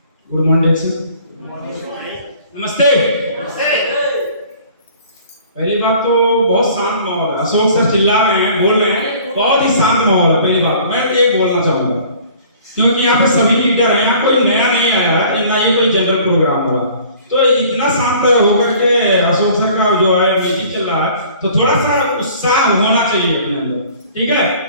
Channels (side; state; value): both; inverted; correlation -0.51